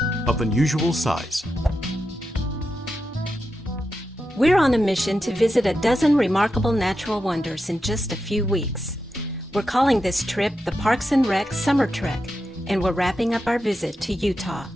of unusual size. We're on a mission to visit a dozen remarkable natural wonders in just a few weeks. We're calling this trip the Parks and Rec Summer Trek, and we're wrapping up our visit to Utah.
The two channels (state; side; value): normal; both; correlation 0.88